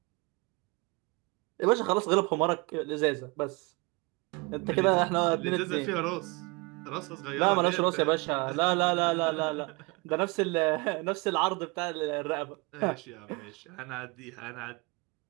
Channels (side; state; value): left; quieter; 27.0 dB